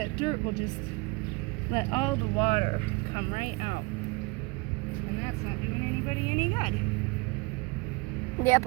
dirt will just let all the water come right out. And that's not doing anybody any good. The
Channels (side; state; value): left; quieter; 26.6 dB